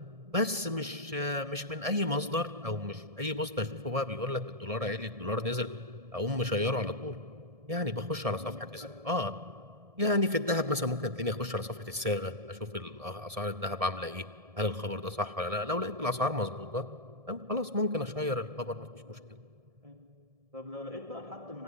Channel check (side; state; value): left; late; 1.7 ms